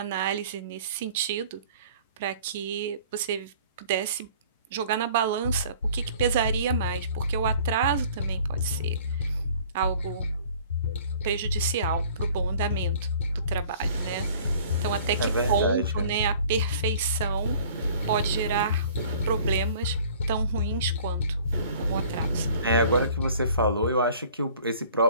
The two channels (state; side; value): inverted; both; correlation -0.51